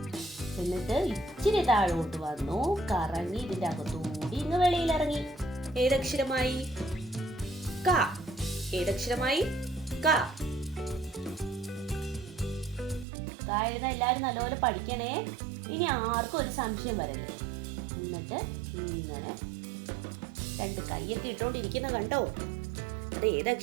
എന്നിട്ട് ഇച്ചിരി താഴോട്ട് വന്നു, കറങ്ങി ഇതിന്റെ അകത്തൂടി ഇങ്ങ് വെളിയിൽ ഇറങ്ങി. ഏതക്ഷരമായി? ക. ഏതക്ഷരമായി? ക. ക എഴുതാൻ എല്ലാവരും നല്ലപോലെ പഠിക്കണേ. ഇനി ആർക്കും ഒരു സംശയം വരല്ലേ. എന്നിട്ട് ഇങ്ങനെ രണ്ട് കൈയൊക്കെ ഇട്ടോണ്ടിരിക്കുന്ന കണ്ടോ? അത്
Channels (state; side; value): drops out; left; at 13.1 s